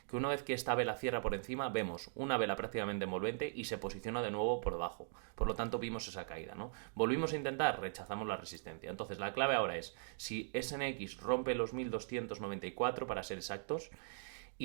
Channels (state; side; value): silent; left; digital silence